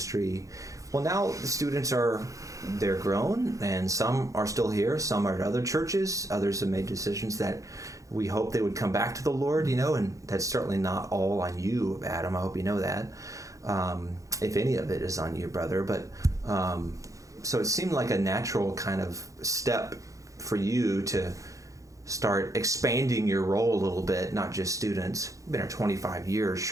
Well, now the students they're grown, and some are still here, some are at other churches, others have made decisions that we hope they would come back to the Lord, and that's certainly not all on you, Adam. I hope you know that. If any of it is on you, brother. But so it seemed like a natural kind of step for you to start expanding your role a little bit, not just students. You've been here 25 years.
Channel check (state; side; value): late; left; 0.16 ms